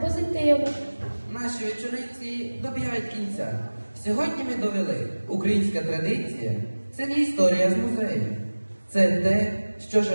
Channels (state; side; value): inverted; both; correlation -1.00